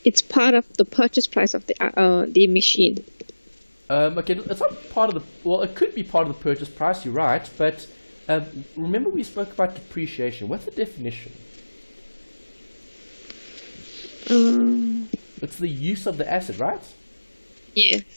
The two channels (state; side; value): inverted; both; correlation -1.00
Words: It's part of the purchase price of the machine. Okay, it's not part of the, well, it could be part of the purchase price, you're right, but remember we spoke about depreciation. What's the definition? It's the use of the asset, right?